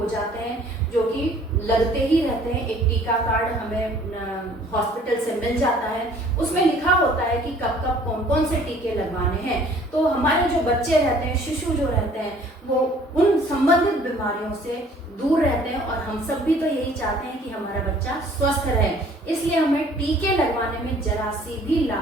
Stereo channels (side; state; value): both; normal; correlation 0.55